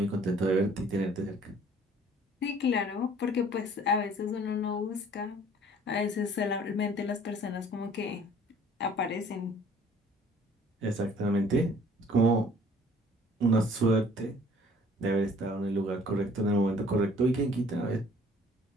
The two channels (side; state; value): both; normal; correlation 0.54